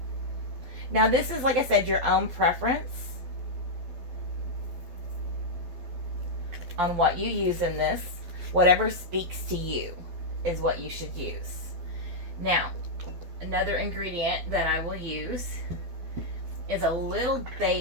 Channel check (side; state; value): left; late; 12 ms